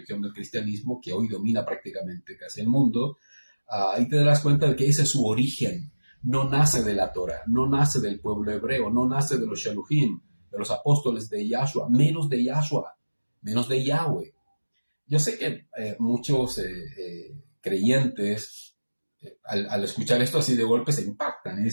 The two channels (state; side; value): inverted; both; correlation -1.00